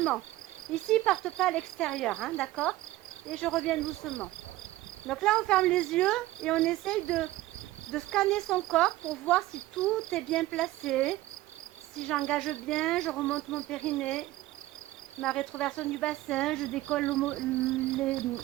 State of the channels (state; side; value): quieter; left; 16.8 dB